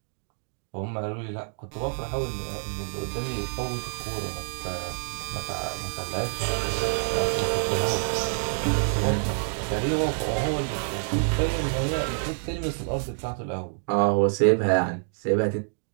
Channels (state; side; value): silent; left; 60 dB below the other